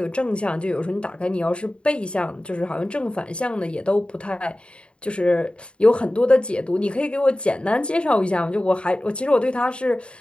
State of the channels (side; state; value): right; late; 0.056 ms